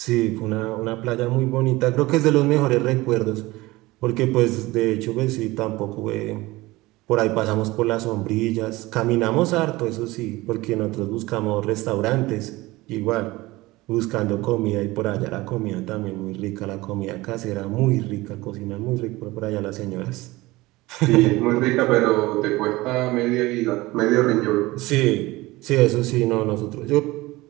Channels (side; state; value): left; quieter; 20.1 dB